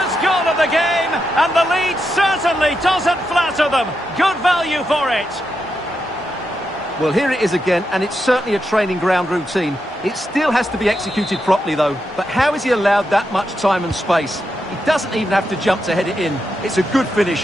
goal of the game, and the lead certainly doesn't flatter them. Good value for it. Well, here it is again, and it's certainly a training ground routine. It still has to be executed properly, though. But how has he allowed that much time and space? He doesn't even have to jump to head it in. It's a good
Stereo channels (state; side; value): normal; both; correlation 0.85